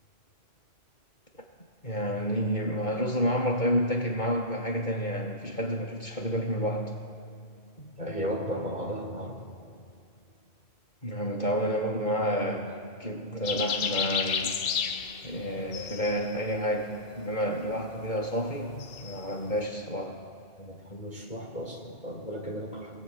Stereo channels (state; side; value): late; right; 2.7 ms